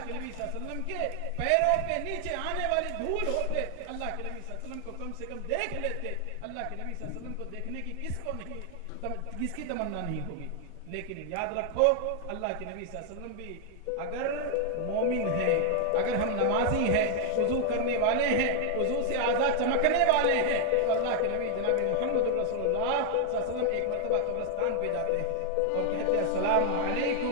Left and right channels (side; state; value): both; different; correlation 0.00